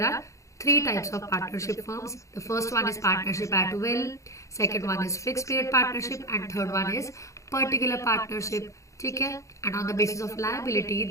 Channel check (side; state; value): right; late; 0.15 ms